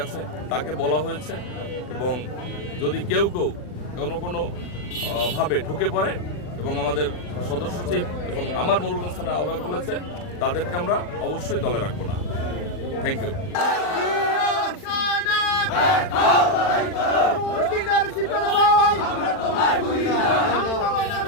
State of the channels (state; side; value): late; right; 40 ms